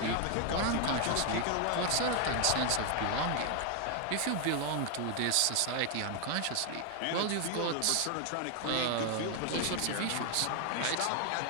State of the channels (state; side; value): different; both; correlation 0.00